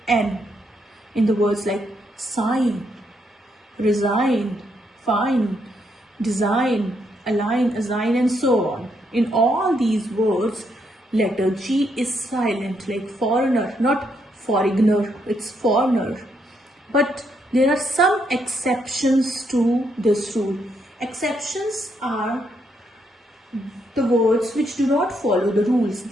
N in the words like sign, resign, fine, design, align, assign, and so on. In all these words, letter G is silent, like foreigner, not foreigner, it's foreigner. But there are some exceptions to this rule. Exceptions are the words which do not follow the rules.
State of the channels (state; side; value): normal; both; correlation 0.76